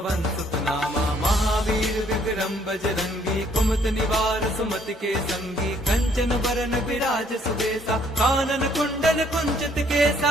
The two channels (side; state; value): both; normal; correlation 0.65